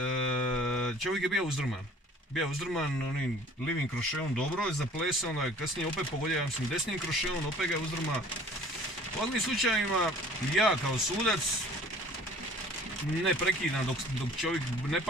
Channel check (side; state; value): both; normal; correlation 0.50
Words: čovjek je bio uzdrman. Bio uzdrman onim livim krošeom, dobro je zaplesao, onda je kasnije opet pogodio, ja mislim, desnim krošeom, opet ga je uzdrma. U ovakvim slučajima ja kao sudac ne prekidam dok čovjek ne